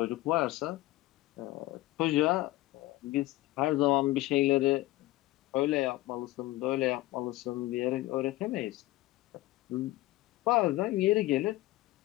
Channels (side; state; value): right; quieter; 17.8 dB